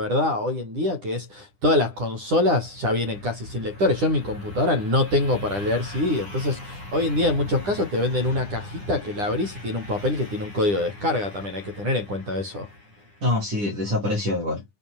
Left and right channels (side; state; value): left; late; 10 ms